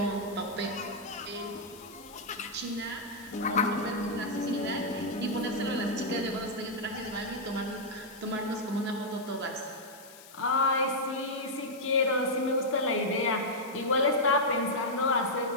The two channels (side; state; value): left; noise; hiss, 19 dB below the sound